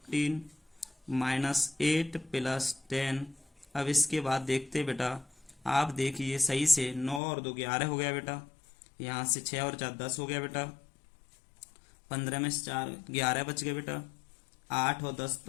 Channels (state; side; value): drops out; right; at 7.2 s